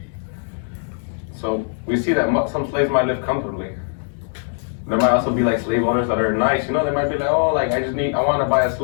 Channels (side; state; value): right; silent; digital silence